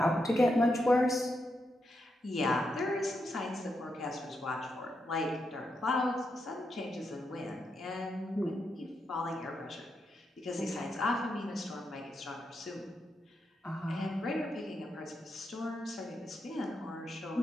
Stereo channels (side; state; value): both; normal; correlation 0.84